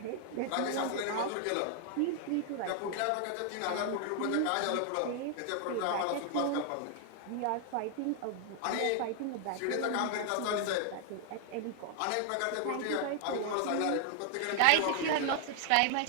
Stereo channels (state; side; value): different; both; correlation 0.00